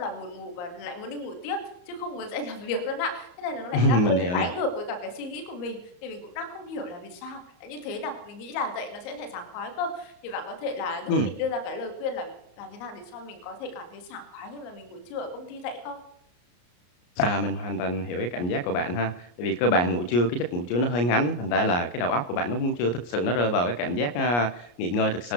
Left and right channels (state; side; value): late; right; 34 ms